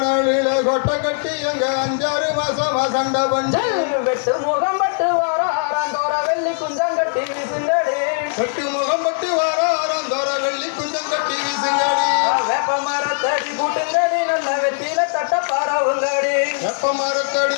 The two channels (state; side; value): silent; right; digital silence